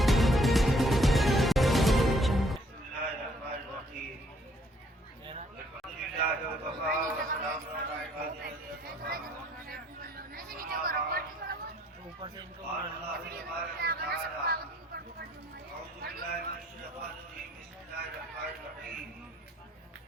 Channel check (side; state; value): both; normal; correlation 0.64